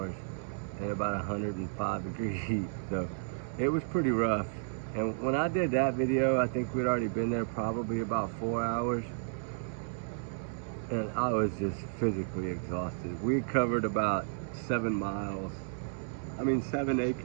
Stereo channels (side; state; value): left; silent; digital silence